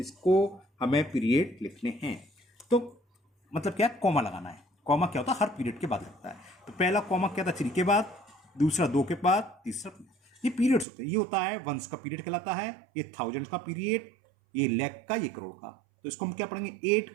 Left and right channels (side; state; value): left; drops out; at 10.9 s